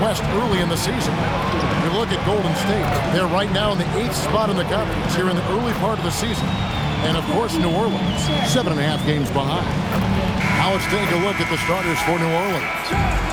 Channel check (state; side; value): identical; both; correlation 1.00